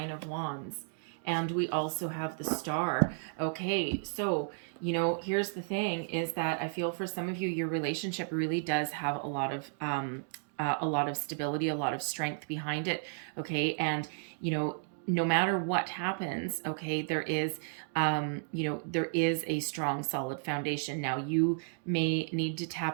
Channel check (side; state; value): left; silent; digital silence